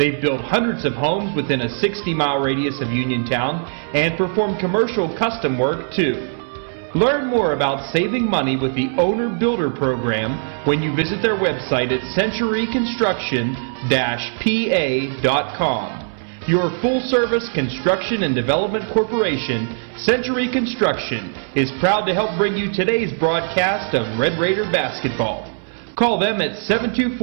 built hundreds of homes within a 60-mile radius of Uniontown and perform commercial custom work too. Learn more about saving money with the Owner Builder Program when you visit their website at centuryconstruction-pa.com. Your full-service construction and development corporation, Century Construction, is proud to help bring you today's broadcast of Red Raider basketball. Call them at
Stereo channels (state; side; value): silent; left; 62 dB below the other